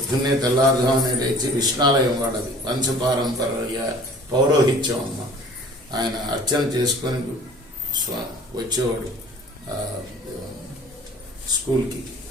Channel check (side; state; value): both; normal; correlation 0.48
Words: తెల్లారుజామునే లేచి విష్ణాలయం వాడది వంశపారంపర్య పౌరోహిత్యం అమ్మ. ఆయన అర్చన చేసుకొని వచ్చేవాడు స్కూల్కి.